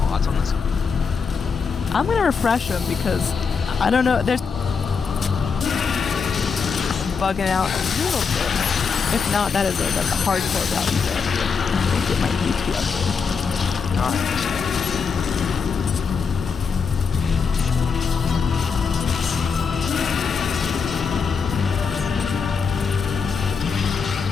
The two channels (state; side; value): quieter; right; 5.6 dB